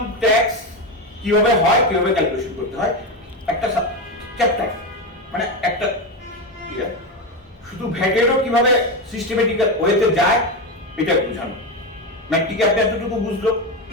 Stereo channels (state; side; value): normal; both; correlation 0.15